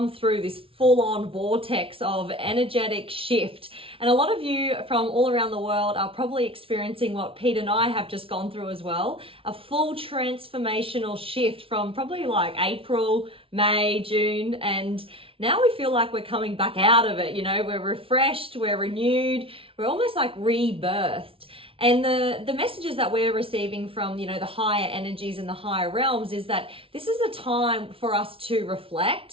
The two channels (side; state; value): left; late; 0.26 ms